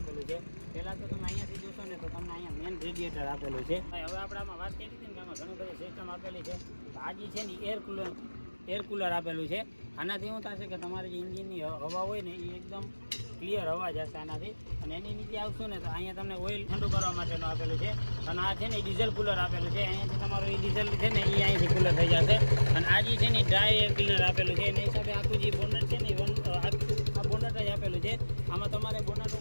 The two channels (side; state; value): both; inverted; correlation -1.00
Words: છે. પહેલાં તો તમે અહીંયાથી જોશો ને તો તમને અહીંયા મેન રેડિએટર આપેલું છે. હવે આપણે આમાં વાત કરી હતી ને કે આમાં ઘણી બધી સિસ્ટમ આપેલી છે. તો આ જે છે ને એર કુલર આપેલું છે. આનાથી શું થશે કે તમારે જે એન્જિનની હવા હોય ને એ એકદમ ક્લિયર હવા જશે આનાથી. અને એની નીચે આવશું ને તો અહીંયા તમને ઓઇલ ઠંડુ કરવા માટેનું આપેલું છે. અને આ છે ને ડીઝલ કુલર આપેલું છે. અહીંયાથી તમારું એ ડીઝલ છે ને એ અહીંથી કુલર થઈ જશે. અને આ જે છે ને ડ્રાય એર ક્લીનર આપેલું છે. એના હિસાબે આખું જે બોનટ છે ને આ બોનટ જ આપેલું છે. આમાં તમારે બોનટ